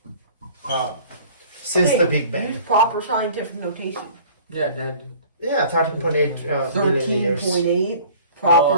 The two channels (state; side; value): inverted; both; correlation -0.48